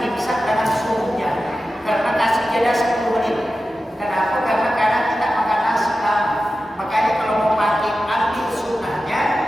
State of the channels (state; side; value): normal; both; correlation 0.93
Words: imsak dengan subuhnya. Karena kasih jeda 10 menit. Kenapa? Karena kadang kita makan nasi lama. Makanya kalau mau pakai ambil sunnahnya,